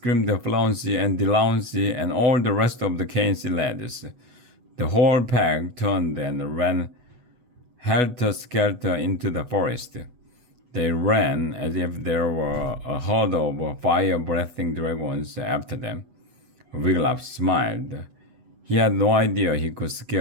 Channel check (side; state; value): left; late; 8.0 ms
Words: Flauncey and Delancey and all the rest of the KNC lads. The whole pack turned and ran helter-skelter into the forest. They ran as if there were a herd of fire-breathing dragons after them. Wigglytuff smiled. He had no idea he could